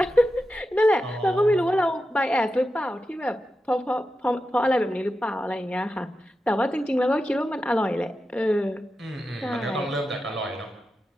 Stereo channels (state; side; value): normal; both; correlation 0.90